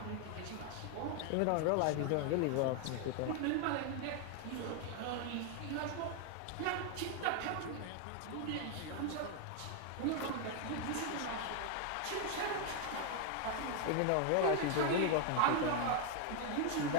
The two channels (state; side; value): different; both; correlation 0.00